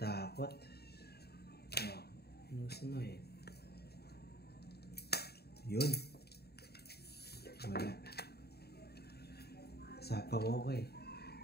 Oh, inusin mo eh. Yun. Wala. Sapaw ako eh.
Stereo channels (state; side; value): late; right; 0.47 ms